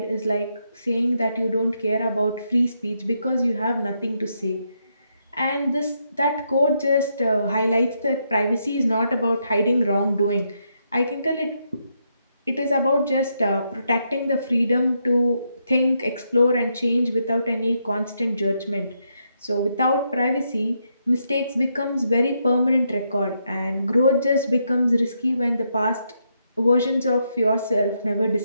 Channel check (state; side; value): inverted; both; correlation -0.79